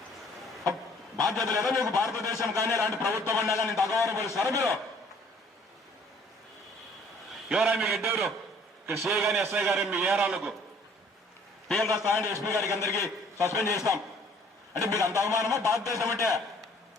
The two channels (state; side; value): normal; both; correlation 0.57